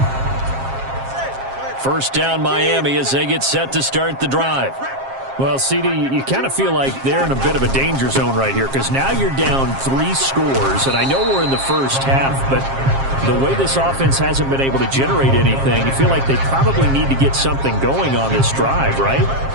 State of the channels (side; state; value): left; late; 7.5 ms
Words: First down Miami as they get set to start the drive. Well, CD, you kind of feel like they're in a bit of a danger zone right here because now you're down 3 scores, and I know we're in the first half, but the way this offense hasn't been able to generate anything, you feel like they probably need to get something going on this drive, right?